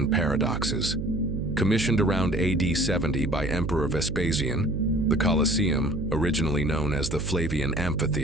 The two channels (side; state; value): right; noise; hum, 4 dB below the sound